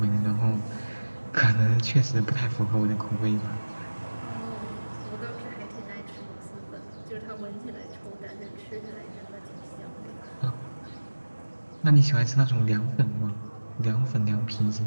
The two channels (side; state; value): both; inverted; correlation -1.00